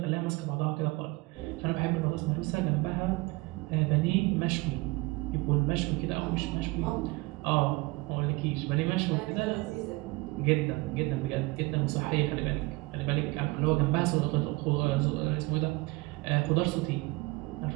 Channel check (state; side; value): quieter; left; 23.7 dB